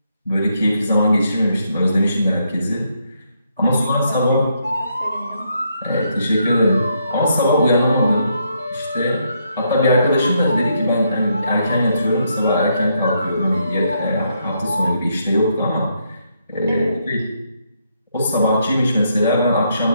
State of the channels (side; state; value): both; inverted; correlation -0.76